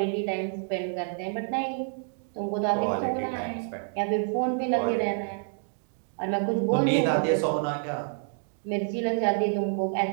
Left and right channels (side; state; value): left; silent; 59 dB below the other